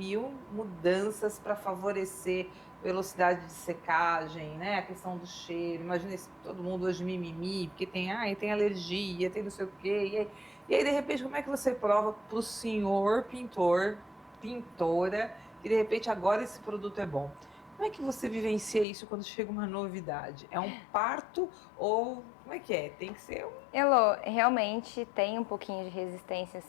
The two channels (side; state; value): right; drops out; at 18.9 s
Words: mudanças para favorecer velocidade de secagem, né? A questão do cheiro. Imagina todo mundo hoje mimimi, porque tem alergia, tem não sei o quê. E aí, de repente, como é que você prova para o senhor pintor, pintora, que de repente agora esse produto é bom? Como é que você vivencia isso quando chega uma novidade? É um parto ou como é que é? Tem que ser um... Elô, realmente tem um pouquinho de resistência,